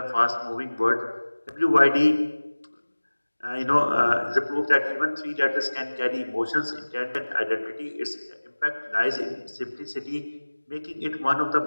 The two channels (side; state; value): both; inverted; correlation -1.00